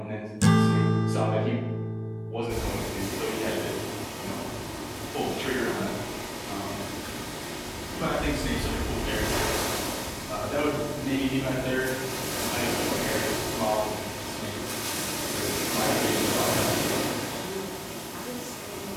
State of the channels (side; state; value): both; identical; correlation 1.00